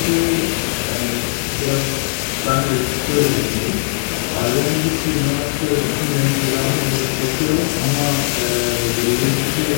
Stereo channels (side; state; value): right; silent; digital silence